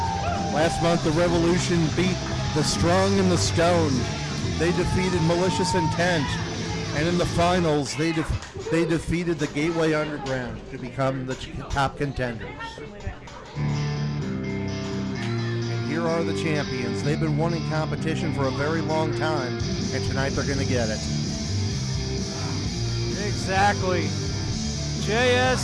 Last month, the Revolution beat the Strong and the Stoned. They defeated Malicious Intent, and in the finals, they defeated the Gateway Underground to become the top contenders. And here are the champions. They've been wanting competition for a very long time, and tonight they're going to get it. Exactly.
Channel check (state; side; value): identical; both; correlation 1.00